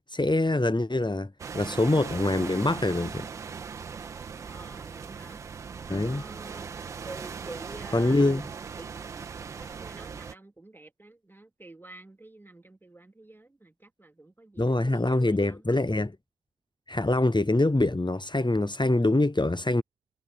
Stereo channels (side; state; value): both; normal; correlation 0.84